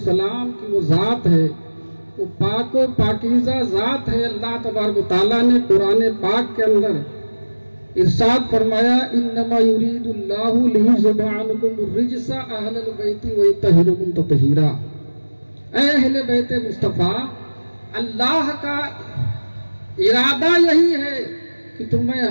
की वो जात है, वो पाको पाकीज़ा जात है। अल्लाह तबारक व तआला ने कुरान पाक के अंदर इरशाद फरमाया, इन्नमा युरीदुल्लाहु लियुज़हिबा अन्कुम रिज्सा अहलल बैति व युतहिरुकुम तत्हीरा। अहले बैत मुस्तफा, अल्लाह का इरादा यही है कि तुम्हें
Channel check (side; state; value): both; inverted; correlation -1.00